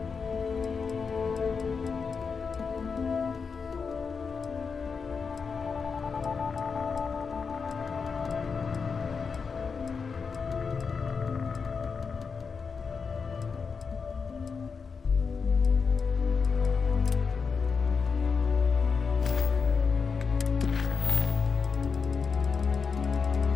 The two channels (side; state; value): right; quieter; 5.4 dB